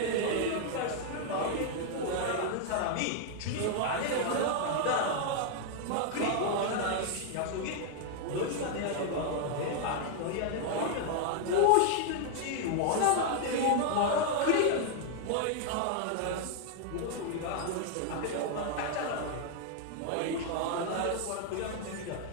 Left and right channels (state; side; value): different; both; correlation 0.00